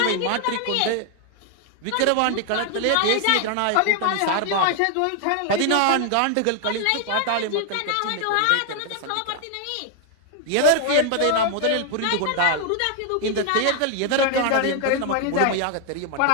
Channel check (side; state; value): both; different; correlation 0.00